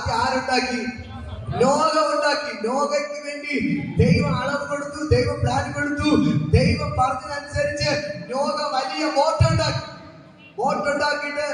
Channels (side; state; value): both; identical; correlation 1.00